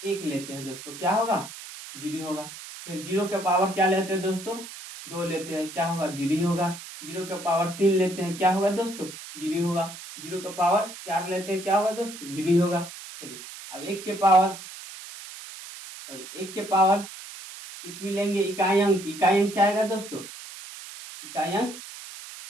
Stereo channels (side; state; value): right; noise; hiss, 13 dB below the sound